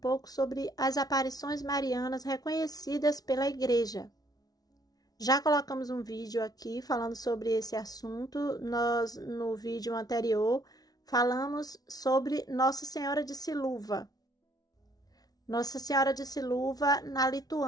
sobre as aparições marianas reconhecidas pela Igreja. Já colocamos um vídeo aqui falando sobre esse assunto. Nós, no vídeo anterior, falamos sobre Nossa Senhora de Siluva. Nossa Senhora de Siluva, na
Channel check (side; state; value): right; late; 0.19 ms